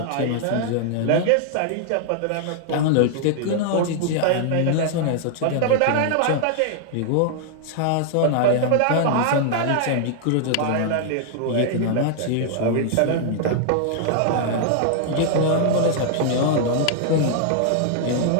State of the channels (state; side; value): different; both; correlation 0.00